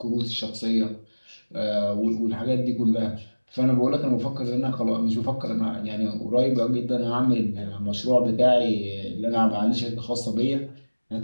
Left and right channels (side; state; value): both; inverted; correlation -1.00